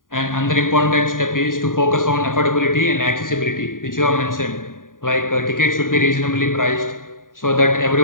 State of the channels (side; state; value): right; late; 0.89 ms